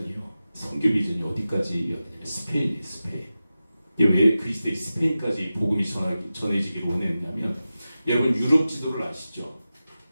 선교 비전이 어디까지 이어지냐면 스페인이에요. 스페인. 왜 그리스도의 스페인까지 복음이 전해지기를 원했냐면, 여러분 유럽 지도를 아시죠?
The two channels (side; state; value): both; inverted; correlation -0.94